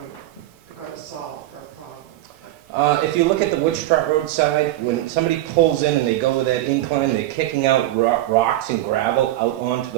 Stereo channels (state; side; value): quieter; left; 15.2 dB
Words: going to solve for a problem? If you look at the Witch Trot Road side, when somebody pulls in and they go with that incline, they're kicking out rocks and gravel out onto